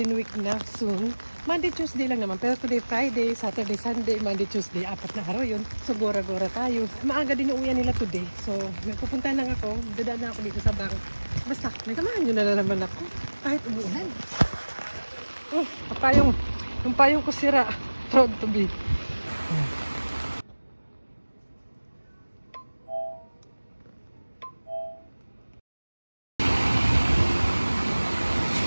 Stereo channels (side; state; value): both; inverted; correlation -1.00